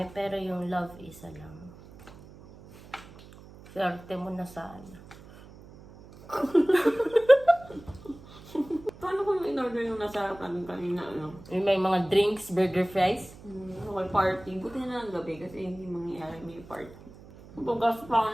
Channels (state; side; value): noise; right; hum, 20 dB below the sound